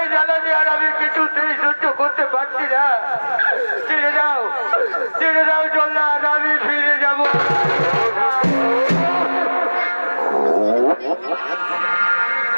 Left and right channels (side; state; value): both; inverted; correlation -1.00